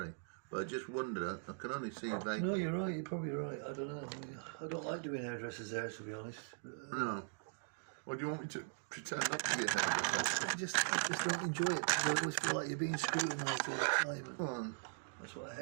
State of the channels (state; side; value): silent; left; digital silence